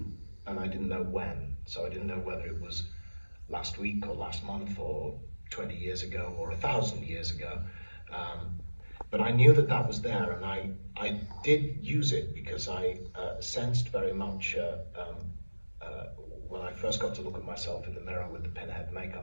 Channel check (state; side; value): inverted; both; correlation -1.00